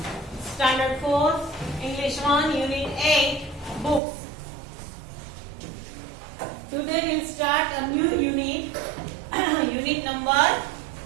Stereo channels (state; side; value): drops out; left; at 4.0 s